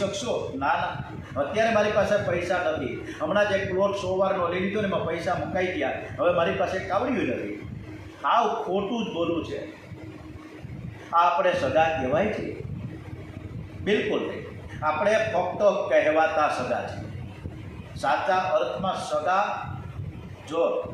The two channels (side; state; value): both; identical; correlation 1.00